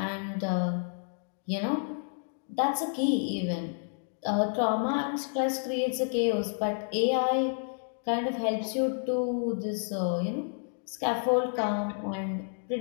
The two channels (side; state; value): right; silent; digital silence